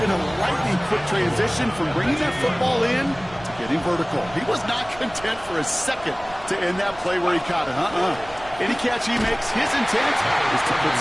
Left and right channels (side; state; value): right; noise; rumble, 19 dB below the sound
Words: a lightning-quick transition from bringing that football in to getting vertical. He was not content for a second to end that play where he caught it. Any catch he makes, his intent is to put